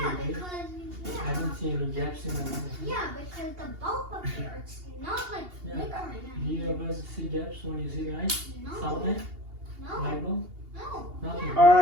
right? because I don't see any gaps in the line. yeah, because the bulb up here, it's not like Yeah. flickering. Do you ever see gaps when you see light? No, Sunlight? no, Light bulb? no. Nothing.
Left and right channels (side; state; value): left; late; 2.8 ms